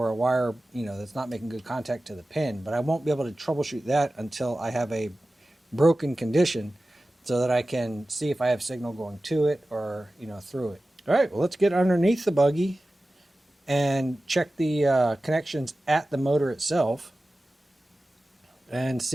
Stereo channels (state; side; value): normal; both; correlation 0.95